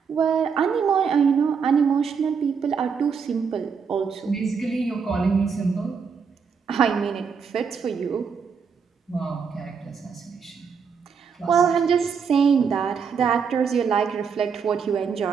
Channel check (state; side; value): quieter; left; 6.1 dB